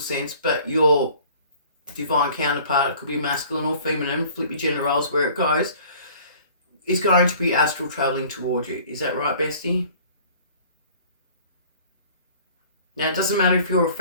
but your divine counterpart, it could be masculine or feminine, flip your gender roles where it goes, is going to be astral traveling towards you. Is that right, Bestie? Now, it doesn't matter if you're a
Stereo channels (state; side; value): inverted; both; correlation -0.50